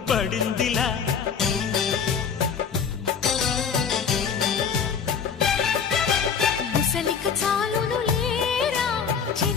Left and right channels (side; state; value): right; quieter; 6.7 dB